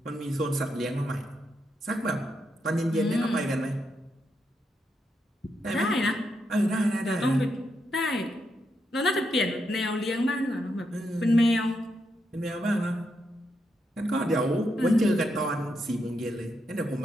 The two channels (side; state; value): both; normal; correlation 0.82